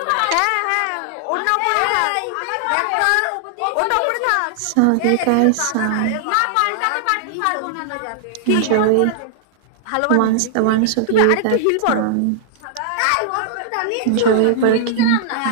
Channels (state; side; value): different; both; correlation -0.01